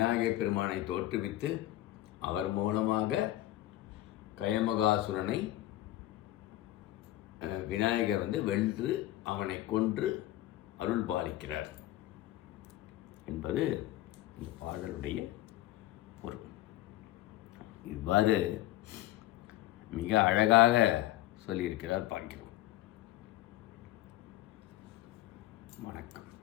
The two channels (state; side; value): quieter; right; 15.2 dB